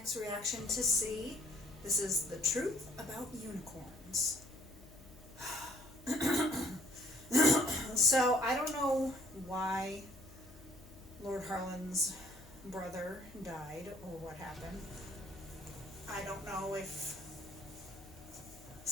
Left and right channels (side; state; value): left; noise; hum, 21 dB below the sound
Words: reaction to See. This is the truth about unicorns. So I don't know why Lord Harlan's brother died or what happened. I don't know if